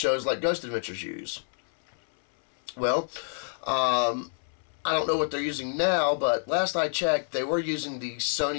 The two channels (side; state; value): right; silent; 59 dB below the other